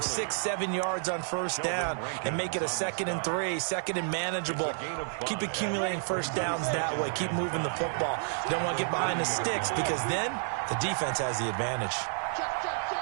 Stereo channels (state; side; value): silent; left; digital silence